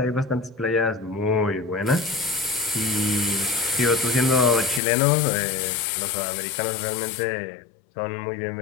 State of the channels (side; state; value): right; drops out; at 4.8 s